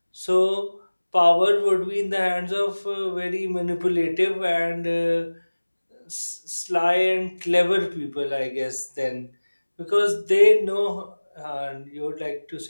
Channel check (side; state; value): both; inverted; correlation -1.00